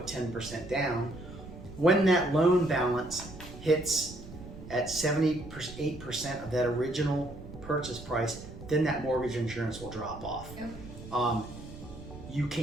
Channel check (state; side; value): noise; right; rumble, 14 dB below the sound